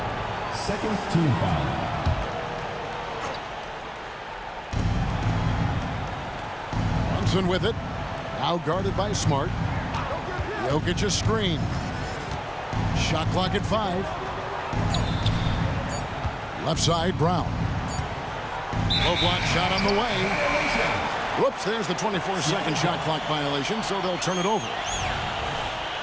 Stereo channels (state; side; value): identical; both; correlation 1.00